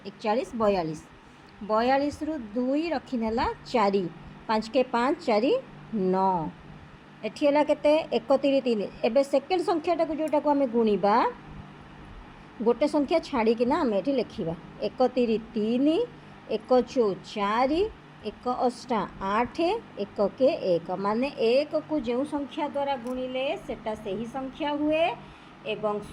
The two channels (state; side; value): identical; both; correlation 1.00